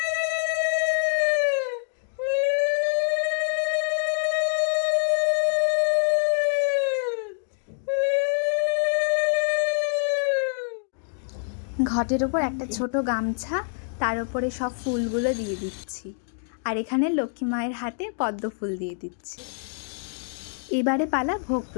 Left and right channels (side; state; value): right; silent; digital silence